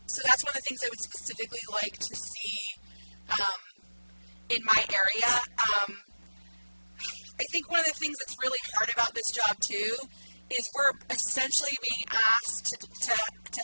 that's one of the things I would specifically like to see in my area. I think one of the things that's really hard about this job too is we're essentially being asked to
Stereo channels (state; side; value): inverted; both; correlation -1.00